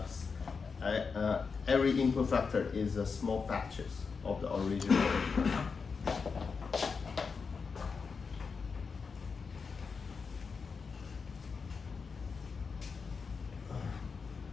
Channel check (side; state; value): right; quieter; 5.2 dB